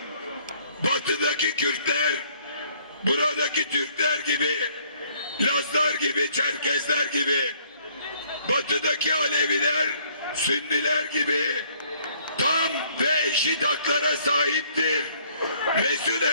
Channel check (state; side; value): inverted; both; correlation -0.63